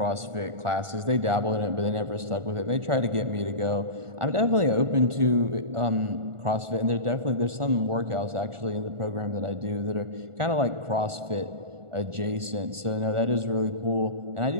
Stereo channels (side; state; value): left; late; 1.4 ms